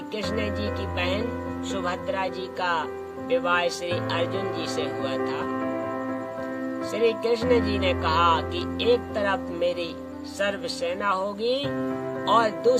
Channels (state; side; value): identical; both; correlation 1.00